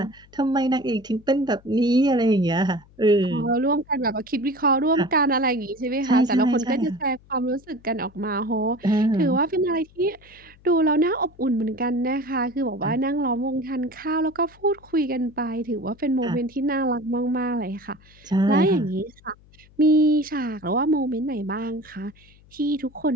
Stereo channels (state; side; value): noise; left; hum, 27 dB below the sound